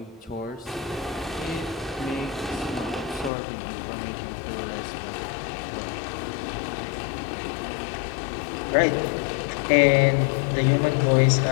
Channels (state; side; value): drops out; right; at 3.3 s